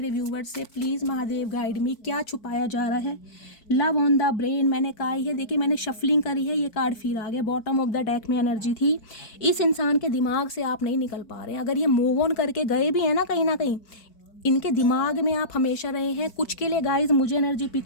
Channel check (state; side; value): late; right; 4.5 ms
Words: व्यूवर्स से, प्लीज़ महादेव गाइड मी, क्या छुपाया जा रहा है। लव ऑन द ब्रेन मैंने कहा है, देखिए मैंने शफलिंग करी है, ये कार्ड फिर आ गया। बॉटम ऑफ द डेक में एनर्जी थी, इस इंसान के दिमाग से आप नहीं निकल पा रहे हैं। अगर ये मूव ऑन करके गए भी हैं ना कहीं इनके दिमाग में आप हमेशा रहे हैं। कुछ के लिए गाइज मुझे एनर्जी पिक